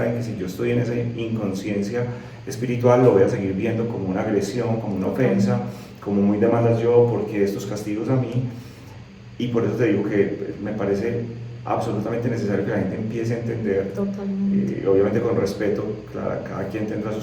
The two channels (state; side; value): identical; both; correlation 1.00